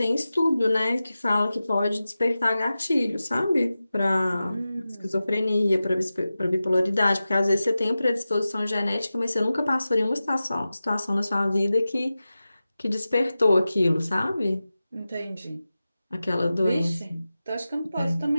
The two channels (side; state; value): both; inverted; correlation -0.94